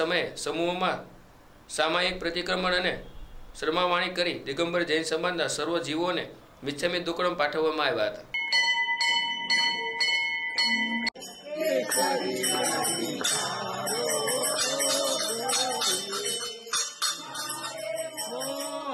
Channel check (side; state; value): both; identical; correlation 1.00